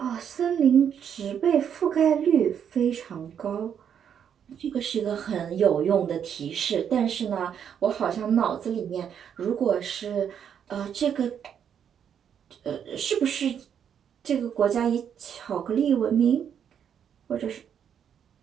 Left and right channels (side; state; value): left; quieter; 8.4 dB